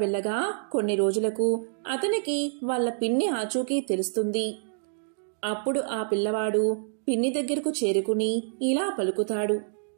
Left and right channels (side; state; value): left; silent; digital silence